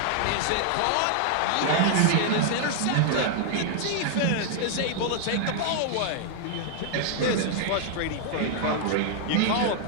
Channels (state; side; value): different; both; correlation -0.01